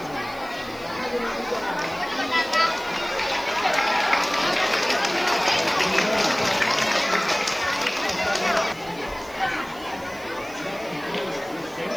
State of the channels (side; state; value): right; noise; hiss, 22 dB below the sound